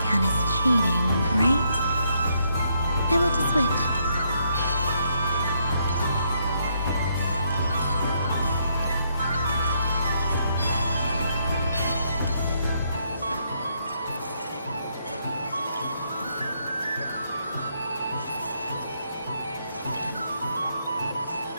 count as cheating, right? I want to switch.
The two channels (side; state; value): both; inverted; correlation -0.75